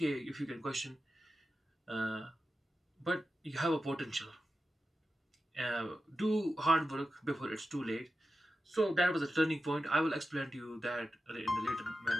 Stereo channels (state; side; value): normal; both; correlation 0.92